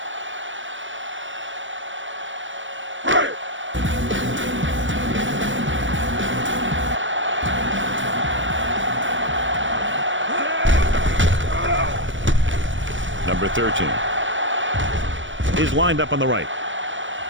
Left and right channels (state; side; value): late; left; 0.56 ms